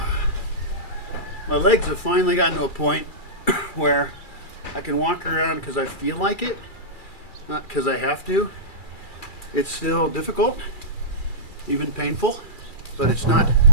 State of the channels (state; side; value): late; right; 2.3 ms